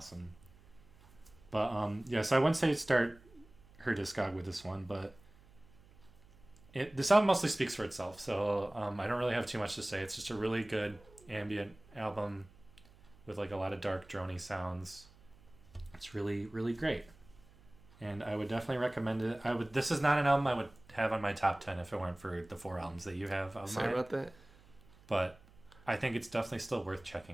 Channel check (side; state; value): right; noise; hum, 25 dB below the sound